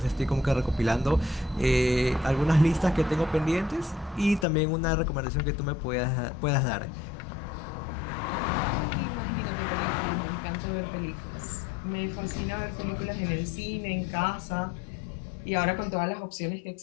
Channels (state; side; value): drops out; right; at 4.5 s